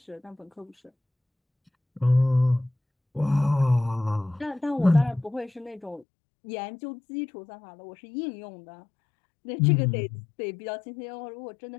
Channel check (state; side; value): drops out; right; at 6.1 s